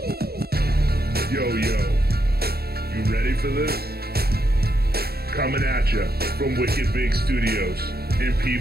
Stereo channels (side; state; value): left; late; 0.46 ms